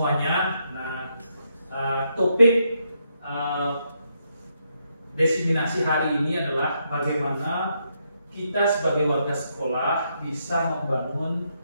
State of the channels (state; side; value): inverted; both; correlation -0.78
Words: Nah, topik diseminasi hari ini adalah bagaimana kita sebagai warga sekolah bisa membangun